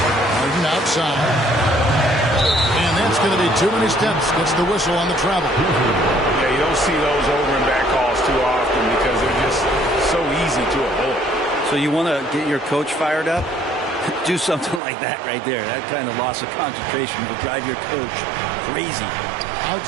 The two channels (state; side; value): drops out; left; at 14.8 s